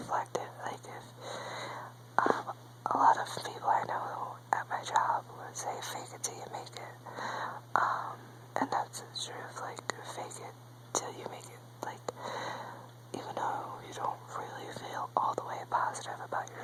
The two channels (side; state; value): both; identical; correlation 1.00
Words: it. Like, if a lot of people I know at my job would say, fake it till you make it. And that's the truth. Like, fake it till you make it. Like, even though you don't really feel all the way positive about